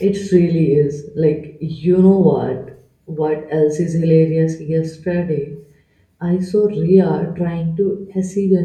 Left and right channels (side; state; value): both; identical; correlation 1.00